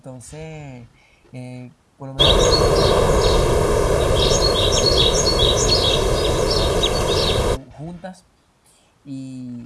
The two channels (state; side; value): identical; both; correlation 1.00